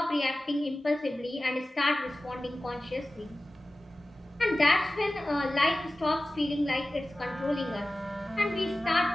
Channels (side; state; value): both; normal; correlation 0.96